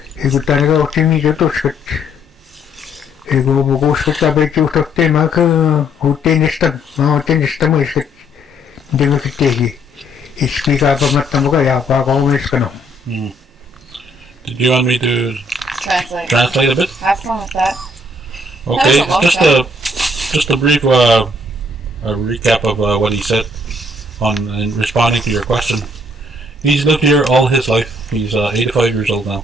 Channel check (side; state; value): both; normal; correlation 0.67